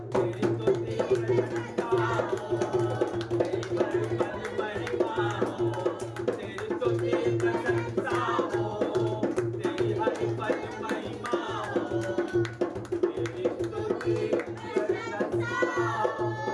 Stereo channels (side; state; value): both; identical; correlation 1.00